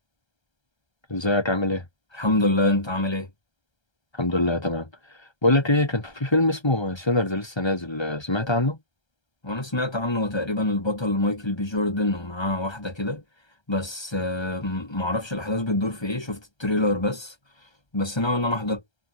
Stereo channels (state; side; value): late; right; 1.3 ms